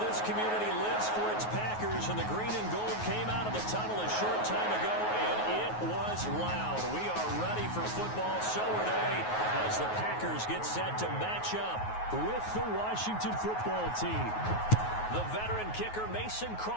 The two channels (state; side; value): late; right; 9.4 ms